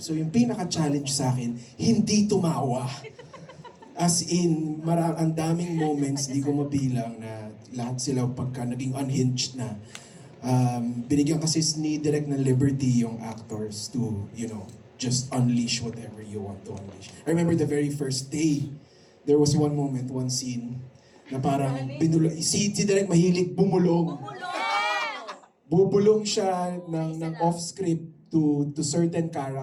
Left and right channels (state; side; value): identical; both; correlation 1.00